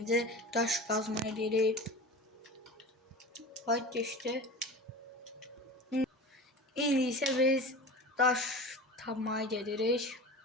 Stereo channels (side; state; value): both; normal; correlation 0.33